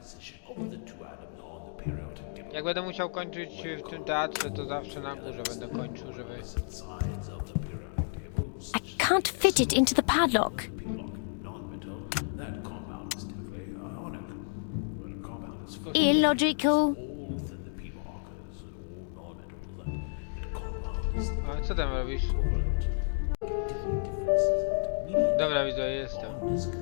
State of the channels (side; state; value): right; silent; digital silence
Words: position of the two atoms on the periodic table. Jak będę musiał kończyć w tym teatrze, to zawsze na górze będę kończył, żeby... Sides of the periodic table, I can't fit it into the padlock. non-metal, that compound is typically ionic. When a compound is full Illogical. all within the p markers, all non-metal, that compound is A co tam robisz? Dobra widzowie, jestem.